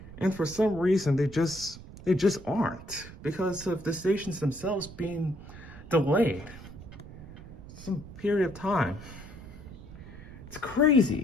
And for some reason, they just aren't, because of the stations themselves being delayed some period of time. It's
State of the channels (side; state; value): right; noise; rumble, 15 dB below the sound